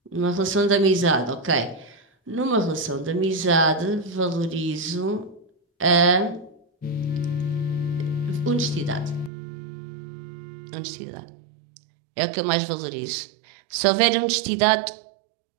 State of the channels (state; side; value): drops out; left; at 9.3 s